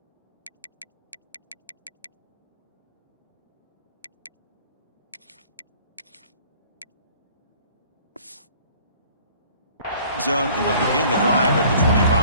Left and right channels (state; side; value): inverted; both; correlation -0.53